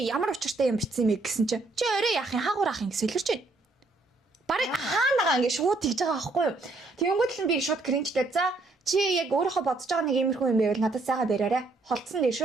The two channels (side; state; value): left; quieter; 3.2 dB